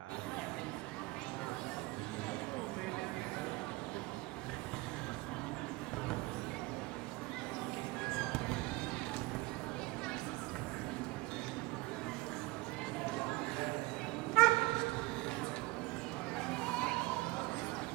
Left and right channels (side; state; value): left; quieter; 21.7 dB